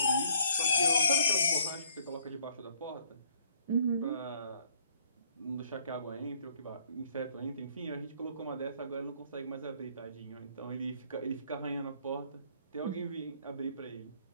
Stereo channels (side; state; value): both; inverted; correlation -0.62